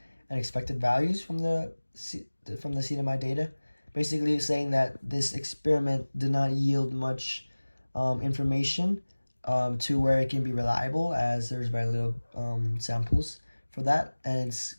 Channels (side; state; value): both; inverted; correlation -1.00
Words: and expected values from the CNMI data. Basically saying that this experiment did not yield much information to where it can be reliable, as there's very little samples for that, and it's